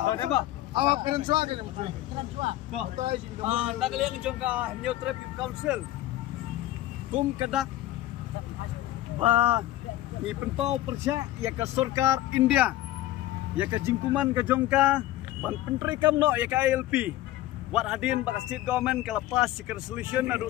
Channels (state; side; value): quieter; right; 15.1 dB